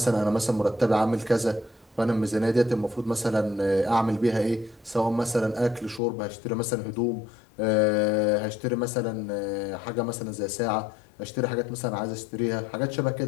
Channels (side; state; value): right; drops out; at 6.0 s